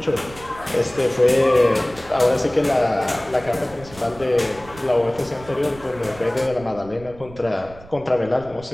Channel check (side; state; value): right; noise; rumble, 20 dB below the sound